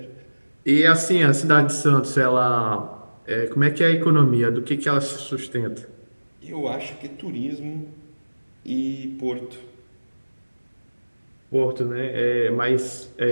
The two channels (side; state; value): both; inverted; correlation -1.00